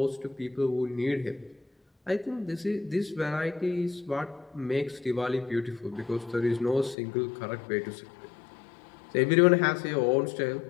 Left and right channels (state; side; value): drops out; right; at 7.0 s